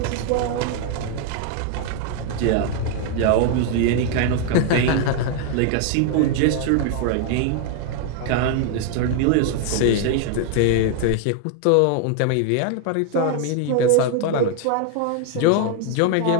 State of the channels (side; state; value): both; different; correlation 0.00